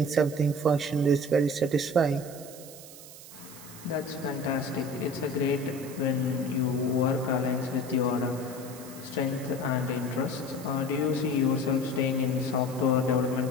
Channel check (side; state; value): right; noise; hiss, 16 dB below the sound